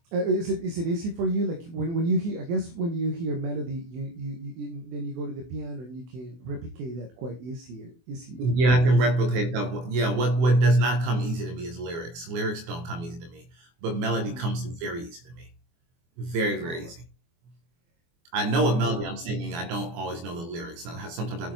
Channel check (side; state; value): left; late; 24 ms